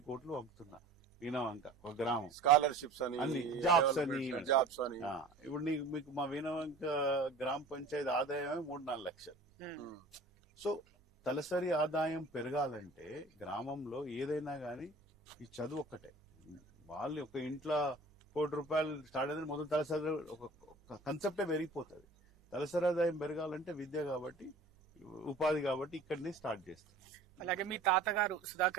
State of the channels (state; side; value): quieter; left; 3.0 dB